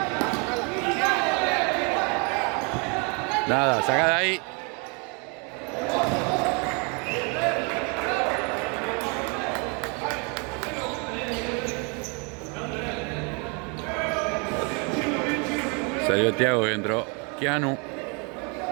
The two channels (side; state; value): left; quieter; 33.5 dB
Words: Nada, sacada ahí. Salió Thiago y entró Keanu.